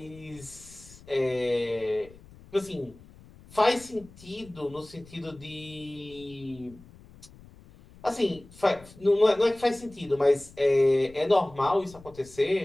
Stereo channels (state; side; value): noise; left; rumble, 22 dB below the sound